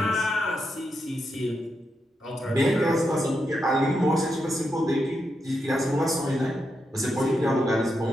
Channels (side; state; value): both; normal; correlation 0.84